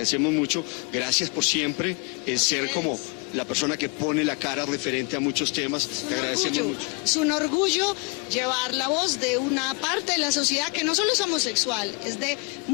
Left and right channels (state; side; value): quieter; right; 31.1 dB